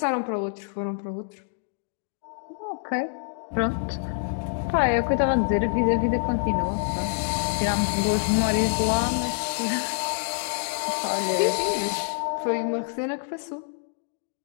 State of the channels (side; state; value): right; silent; digital silence